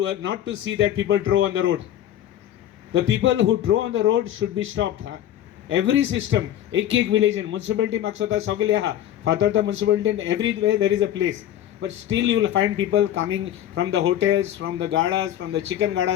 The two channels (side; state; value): right; quieter; 11.7 dB